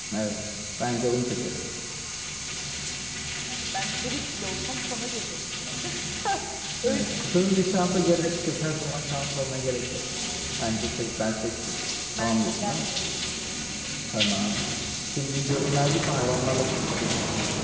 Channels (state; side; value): identical; both; correlation 1.00